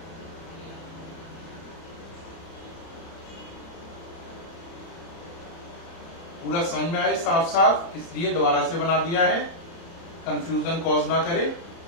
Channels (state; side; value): late; right; 30 ms